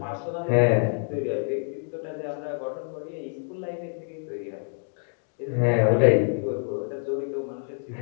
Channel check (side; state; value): right; silent; 60 dB below the other